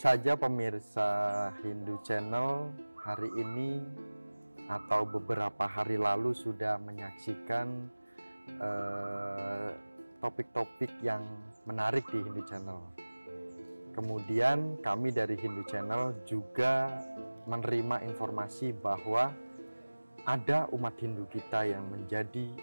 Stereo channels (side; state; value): both; inverted; correlation -1.00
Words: pemirsa Hindu Channel hari ini atau beberapa hari lalu sudah menyaksikan topik-topik yang menarik di Hindu Channel. Kemudian kami dari Hindu Channel juga menerima informasi bahwa ada umat Hindu kita yang menjadi